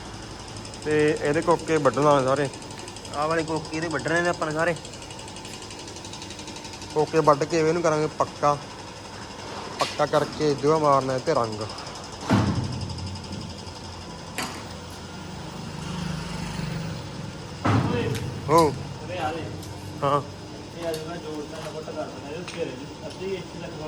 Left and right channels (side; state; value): both; identical; correlation 1.00